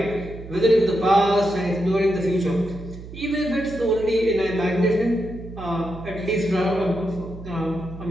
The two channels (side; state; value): right; noise; hum, 13 dB below the sound